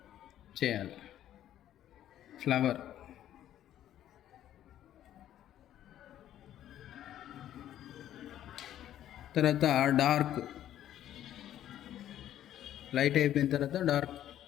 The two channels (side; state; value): right; quieter; 11.7 dB